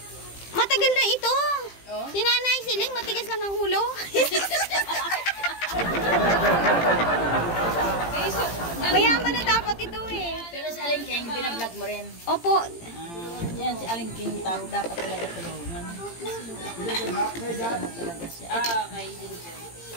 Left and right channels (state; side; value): late; right; 18 ms